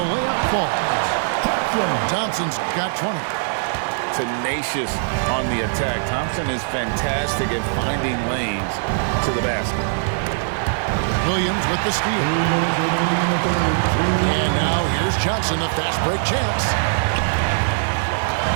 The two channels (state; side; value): silent; left; digital silence